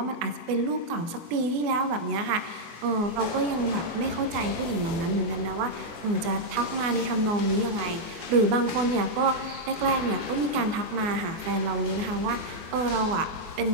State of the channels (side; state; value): left; late; 24 ms